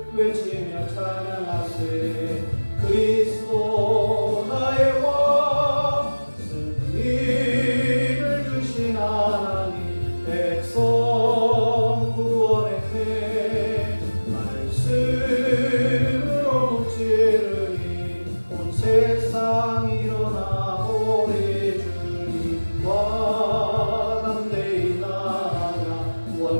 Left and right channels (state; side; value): inverted; both; correlation -1.00